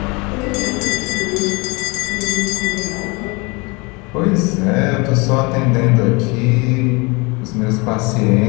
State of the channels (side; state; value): right; quieter; 27.5 dB